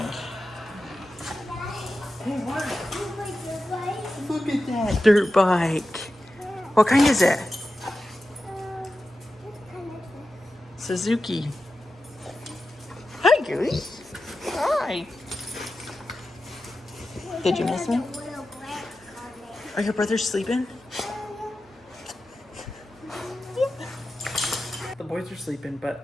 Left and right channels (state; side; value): normal; both; correlation 0.92